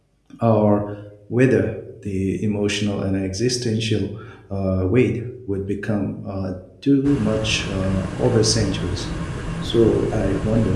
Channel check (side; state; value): both; identical; correlation 1.00